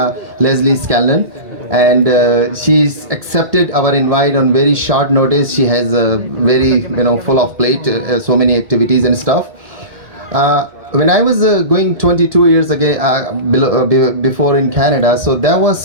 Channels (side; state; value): left; late; 1.8 ms